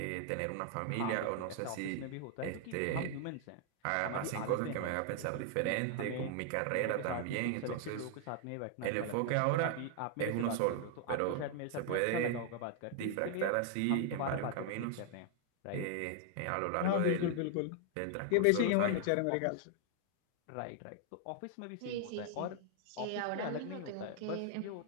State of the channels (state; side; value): different; both; correlation 0.00